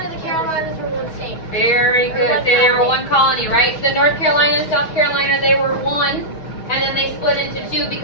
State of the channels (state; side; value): late; right; 6.2 ms